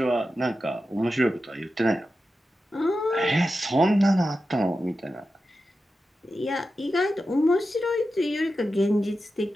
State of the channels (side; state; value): both; normal; correlation 0.91